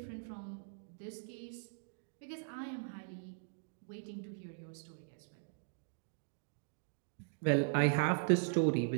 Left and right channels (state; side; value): silent; left; digital silence